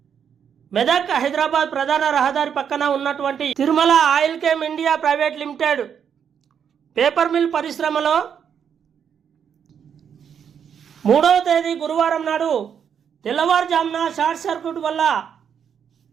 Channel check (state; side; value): quieter; left; 7.8 dB